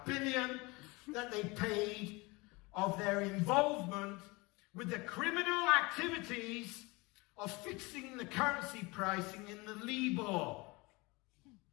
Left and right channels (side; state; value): right; quieter; 24.9 dB